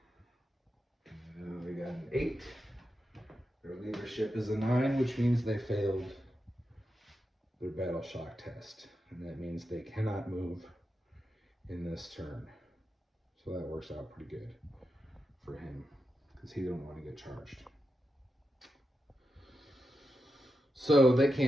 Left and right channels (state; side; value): normal; both; correlation 0.88